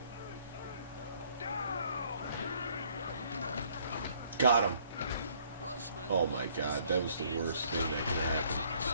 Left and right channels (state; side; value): inverted; both; correlation -0.62